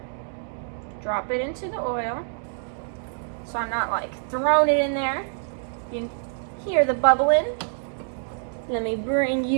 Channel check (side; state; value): left; silent; digital silence